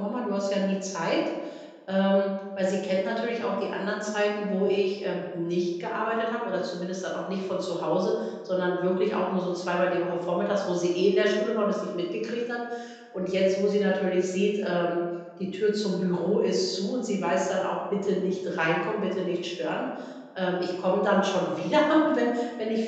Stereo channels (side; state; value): both; identical; correlation 1.00